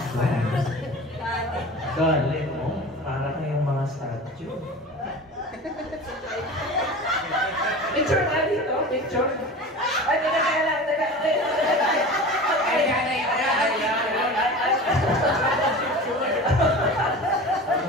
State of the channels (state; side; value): normal; both; correlation 0.34